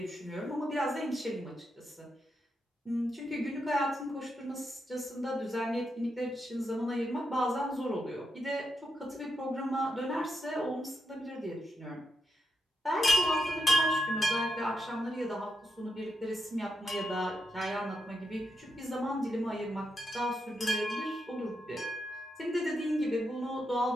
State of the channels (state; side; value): normal; both; correlation 0.83